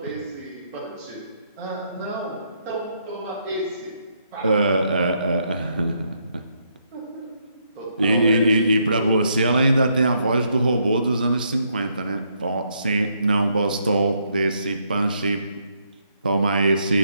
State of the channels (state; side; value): inverted; both; correlation -0.75